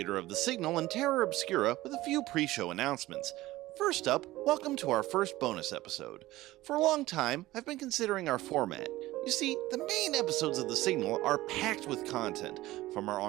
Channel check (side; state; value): left; quieter; 17.3 dB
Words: of The Signal and Terra Obscura, with a few pre-show announcements. First up, welcome to our first bonus episode. For a long time, I've been considering our format. You see, the main episodes of The Signal are packed with content, from our